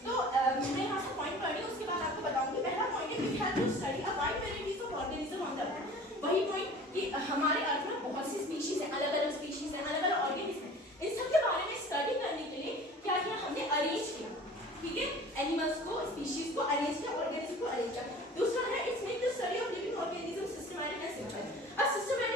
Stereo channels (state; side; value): normal; both; correlation 0.43